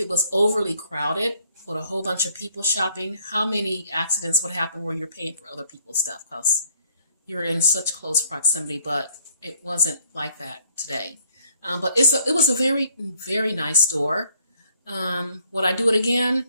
was overly crowded with a whole bunch of people shopping, how many accidents would happen where you're paying for other people's stuff because you're in such close proximity, but it wasn't like that today. But it was a very, very nice store. Would I do it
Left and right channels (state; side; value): inverted; both; correlation -0.65